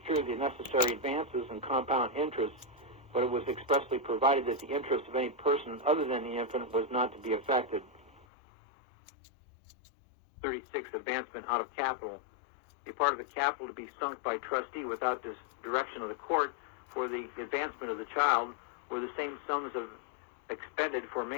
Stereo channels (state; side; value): drops out; right; at 8.2 s